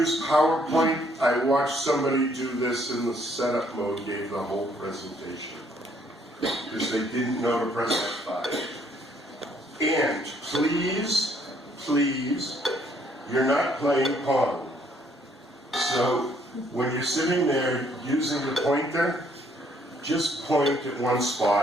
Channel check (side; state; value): both; normal; correlation 0.66